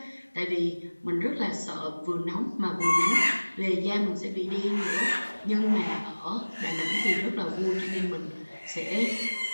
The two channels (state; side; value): inverted; both; correlation -1.00